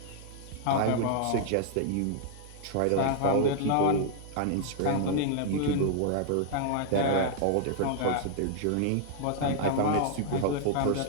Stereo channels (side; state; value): both; different; correlation -0.01